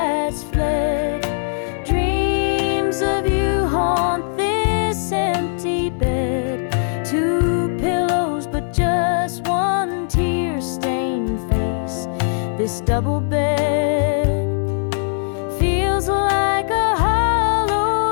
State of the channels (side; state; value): right; silent; 65 dB below the other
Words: fled. Dreams of you haunt this empty bed. 2 pillows, but just one tear-stained face. This double bed feels like a